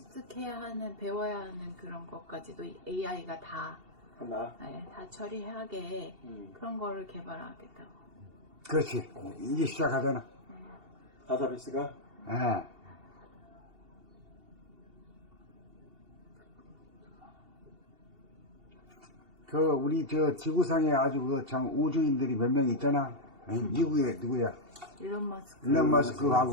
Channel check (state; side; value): late; left; 2.7 ms